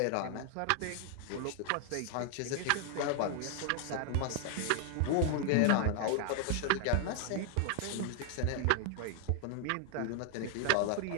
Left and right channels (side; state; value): both; different; correlation 0.00